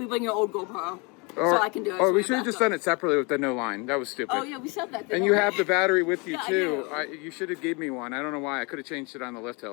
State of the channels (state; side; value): quieter; right; 29.9 dB